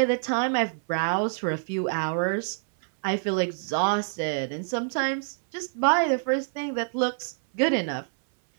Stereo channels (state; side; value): silent; left; 59 dB below the other